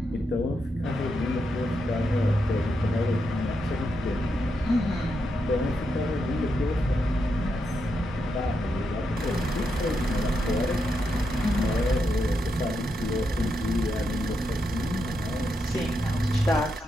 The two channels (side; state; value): both; normal; correlation 0.83